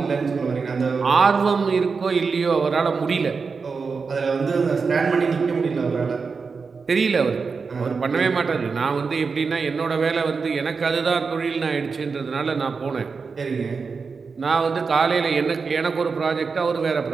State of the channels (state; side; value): quieter; left; 5.0 dB